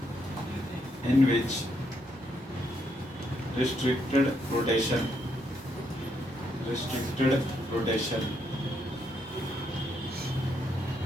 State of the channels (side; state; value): both; normal; correlation 0.76